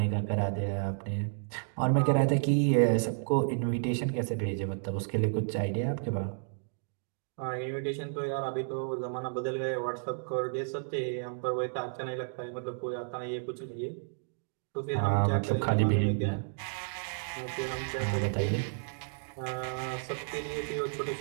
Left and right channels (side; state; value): left; silent; digital silence